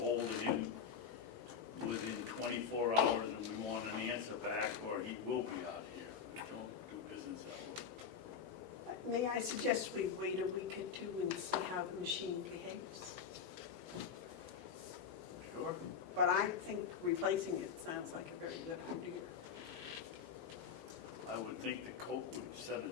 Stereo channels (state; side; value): quieter; right; 6.9 dB